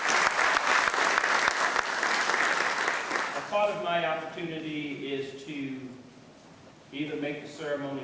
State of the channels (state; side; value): identical; both; correlation 1.00